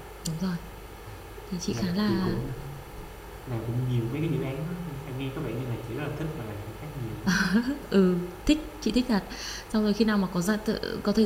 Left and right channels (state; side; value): identical; both; correlation 1.00